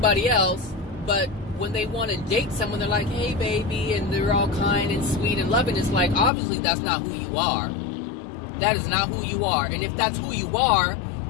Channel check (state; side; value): drops out; right; at 6.3 s